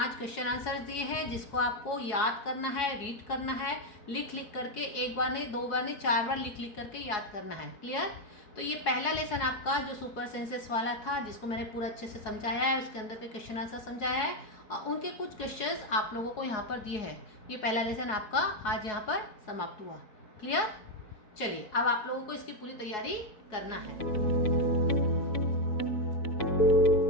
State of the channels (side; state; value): right; late; 4.7 ms